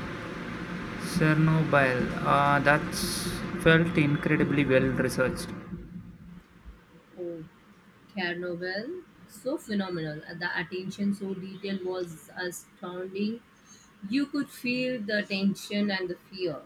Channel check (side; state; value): both; identical; correlation 1.00